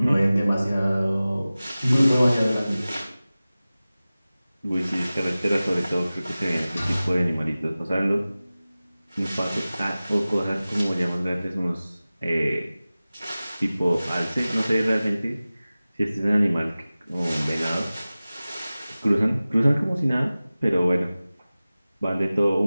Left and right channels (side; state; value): both; inverted; correlation -0.97